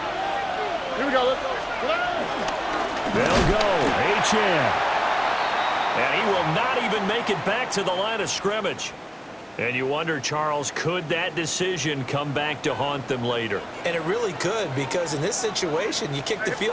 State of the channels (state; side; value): identical; both; correlation 1.00